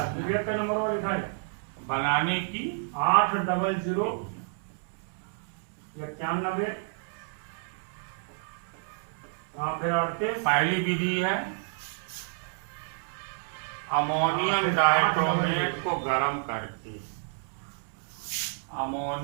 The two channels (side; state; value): left; silent; digital silence